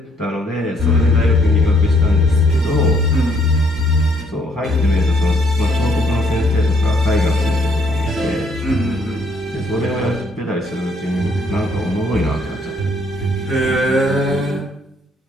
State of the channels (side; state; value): both; normal; correlation 0.67